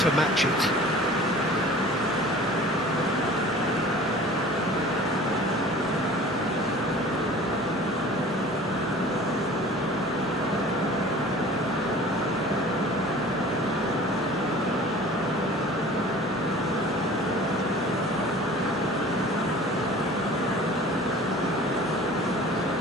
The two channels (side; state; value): both; normal; correlation 0.44